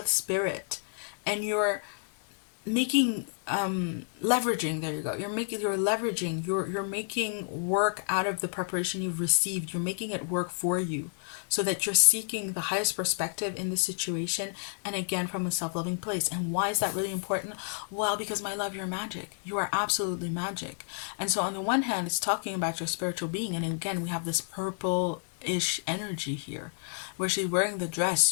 spirit and you're making leveraging, there you go, you're leveraging, you're making work out of the preparation you've received. You're making it work for you so that you're seeking the highest perspective in this situation, and again from a self-loving place. And why is that really important? Well, because my love, you're magic. You are absolutely magic. And so on the one hand, it's talking about your spiritual being, and again we have this purple-ish energy here where she's wearing the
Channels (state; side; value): silent; right; digital silence